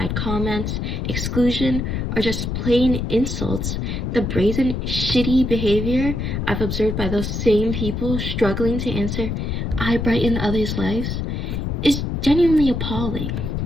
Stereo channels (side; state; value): left; noise; rumble, 2 dB below the sound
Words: comments, exclusion, or just plain insults. The brazen, shitty behavior I've observed by those same people struggling to answer, I brighten others' lives, is genuinely appalling.